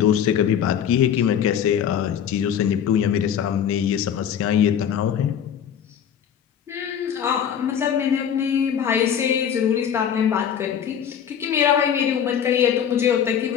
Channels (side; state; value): right; quieter; 8.7 dB